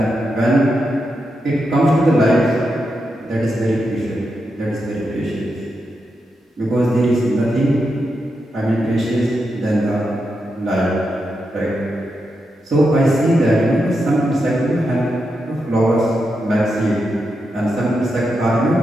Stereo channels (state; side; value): normal; both; correlation 0.86